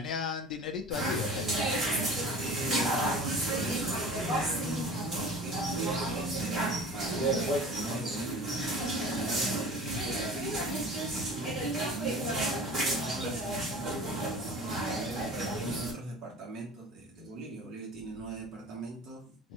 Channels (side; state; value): both; normal; correlation 0.40